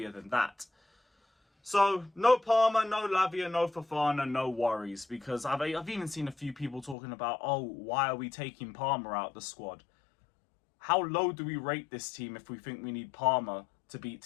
than that. So, no Palmer, no Lavia, no Fofana, no worries. Because I've even seen a few people talking about, oh, why are we taking Palmer out the squad? How low do we rate this team if we think we need Palmer to beat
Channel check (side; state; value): right; drops out; at 7.0 s